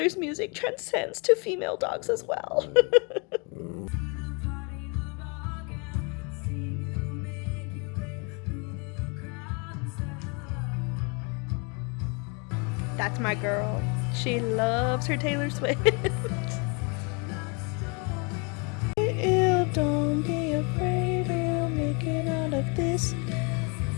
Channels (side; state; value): right; quieter; 33.1 dB